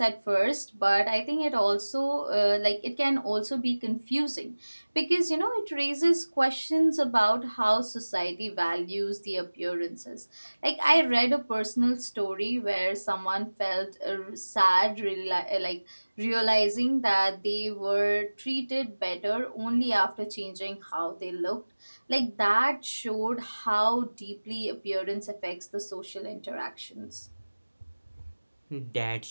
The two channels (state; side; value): inverted; both; correlation -1.00